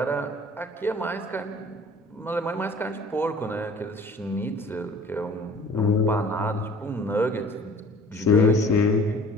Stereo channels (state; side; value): normal; both; correlation 0.49